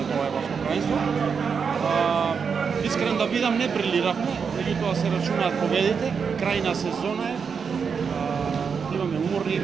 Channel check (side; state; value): left; quieter; 6.1 dB